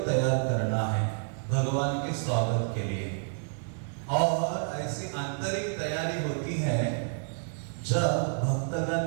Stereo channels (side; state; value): left; silent; digital silence